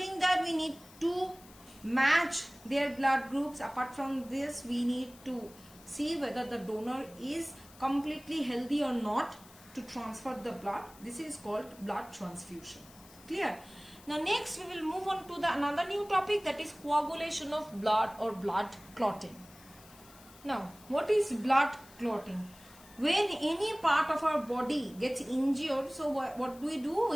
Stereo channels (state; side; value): noise; left; hiss, 22 dB below the sound